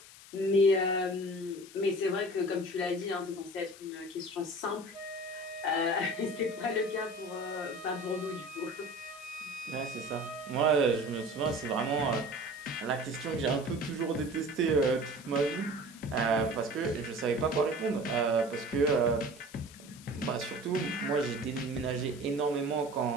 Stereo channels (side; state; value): left; noise; hiss, 19 dB below the sound